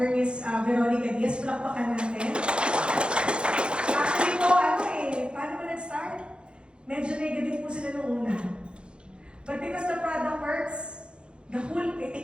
Miss Veronica Diaz. Palakpakan natin. Actually po, paano mo nag-start? Medyo negative po sila noong una. But because the product works, the whole, take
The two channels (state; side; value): late; left; 0.055 ms